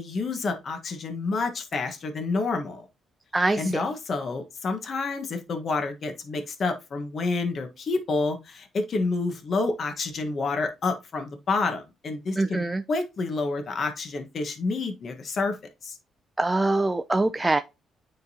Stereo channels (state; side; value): normal; both; correlation 0.84